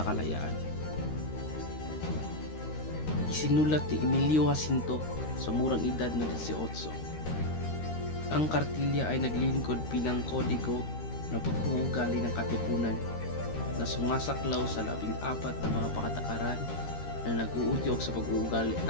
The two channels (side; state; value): right; late; 13 ms